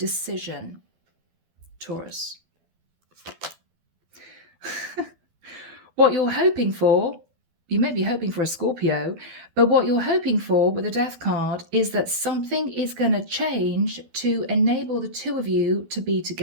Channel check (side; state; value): left; late; 12 ms